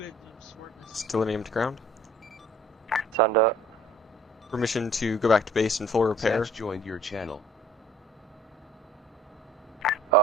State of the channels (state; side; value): normal; both; correlation 0.52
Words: Still named ground. Send it. Permission to go back to base in full repair. Zatch joined your channel.